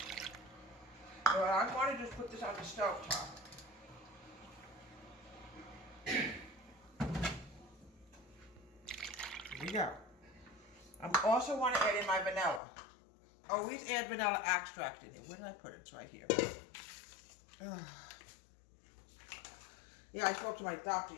So I'm going to just put this on the stove top. Here we go. I also want to add in my vanilla. Always add vanilla extract in here. Where did I put it? It's right here. Yeah, I spoke to my doctor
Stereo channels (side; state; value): right; drops out; at 12.6 s